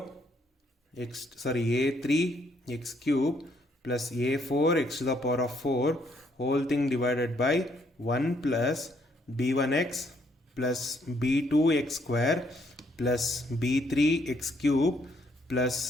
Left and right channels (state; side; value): normal; both; correlation 0.70